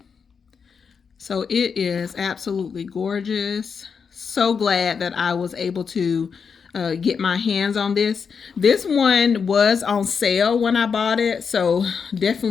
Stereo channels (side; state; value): right; quieter; 6.0 dB